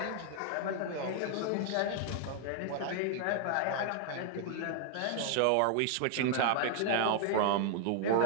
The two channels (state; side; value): different; both; correlation 0.00